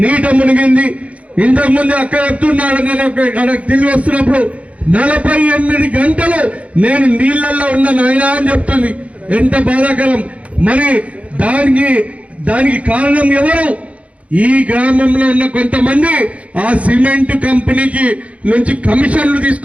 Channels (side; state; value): left; late; 0.065 ms